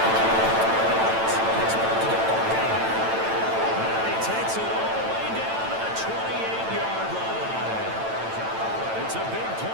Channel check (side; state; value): left; late; 9.0 ms